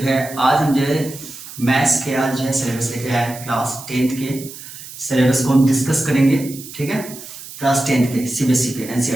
है आज हम जो है मैथ्स के आज जो है सिलेबस लेके आए क्लास 10th के सिलेबस को हम डिस्कस करेंगे। ठीक है, क्लास 10th के सीबीएसई के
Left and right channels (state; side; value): noise; right; hiss, 14 dB below the sound